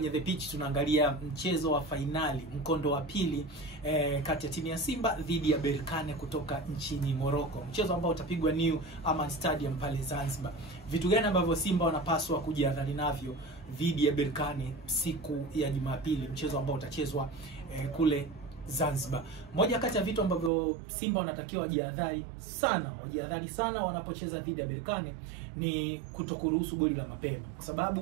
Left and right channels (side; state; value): left; drops out; at 20.5 s